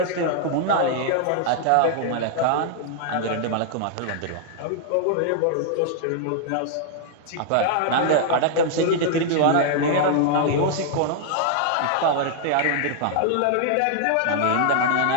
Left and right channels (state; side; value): different; both; correlation -0.01